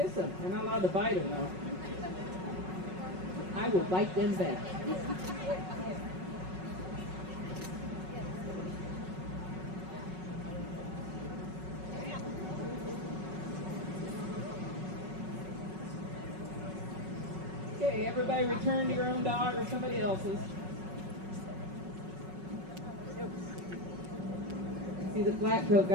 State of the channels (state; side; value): late; left; 5.4 ms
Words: them. They're not allowed to bite them, though. I will bite them back. Okay, everybody return to your own dog or somebody else's. See, the black coat